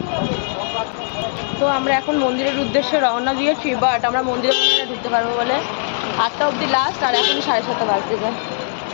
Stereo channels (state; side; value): silent; right; digital silence